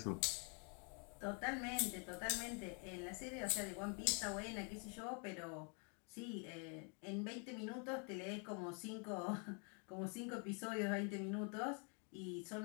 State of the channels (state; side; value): quieter; right; 38.3 dB